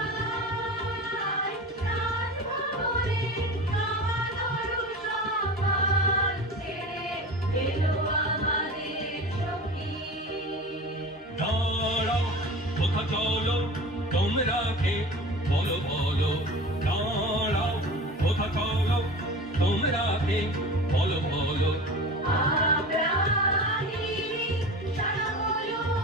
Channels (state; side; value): normal; both; correlation 0.34